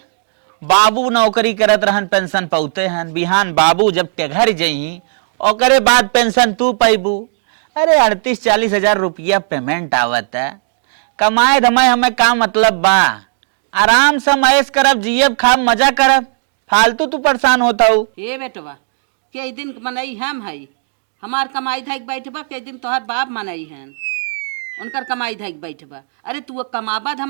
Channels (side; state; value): left; silent; digital silence